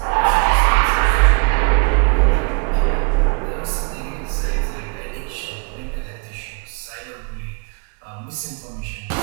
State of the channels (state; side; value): quieter; left; 34.6 dB